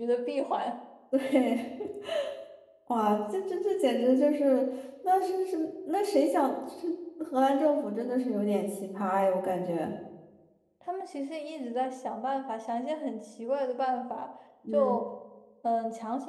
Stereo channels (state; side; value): identical; both; correlation 1.00